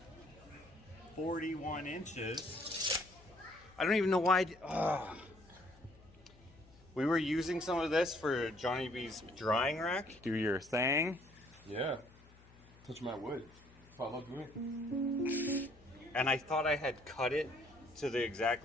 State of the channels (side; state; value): left; noise; hum, 25 dB below the sound